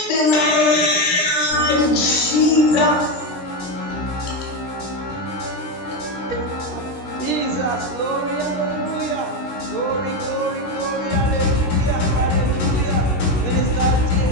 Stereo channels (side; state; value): right; late; 16 ms